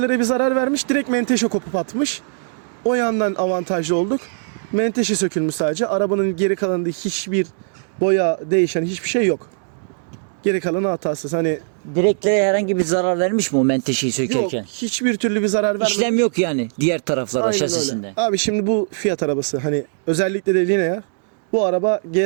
bir zarar vermiş. Direkt menteşe kopup atmış. O yandan avantajlı olduk. Menteşe sökülmüş sadece. Arabanın geri kalanında hiçbir boya değişen hiçbir şey yok. Geri kalanı hatasız. Hani Direklere herhangi bir zarar vermiş mi o menteşeyi yok, sökerken? hiçbir türlü bir zarar vermedi. İşlem yok yani diğer taraflara, Aynen şasisinde. öyle. Abi şimdi bu Fiat arabası, hani özellikle de Linea, bu araba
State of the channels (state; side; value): silent; left; digital silence